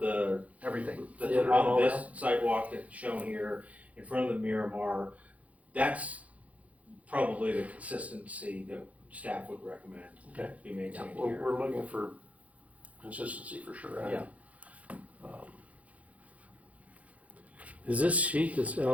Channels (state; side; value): late; left; 0.067 ms